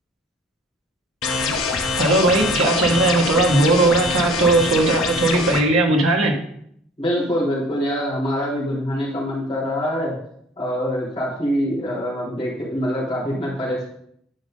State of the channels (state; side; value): normal; both; correlation 0.49